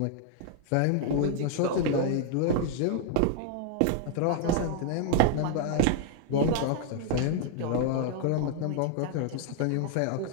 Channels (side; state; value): both; different; correlation 0.00